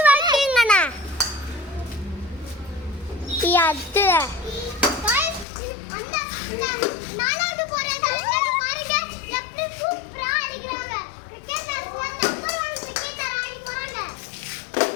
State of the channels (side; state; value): right; drops out; at 5.5 s